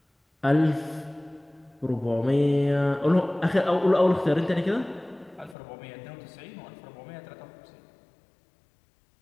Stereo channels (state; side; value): drops out; right; at 5.6 s